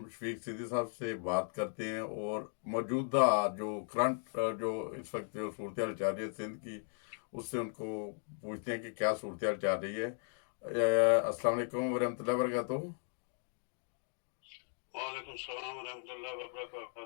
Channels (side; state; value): right; silent; 53 dB below the other